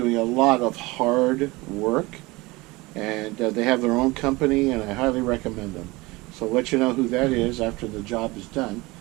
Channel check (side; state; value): left; quieter; 22.5 dB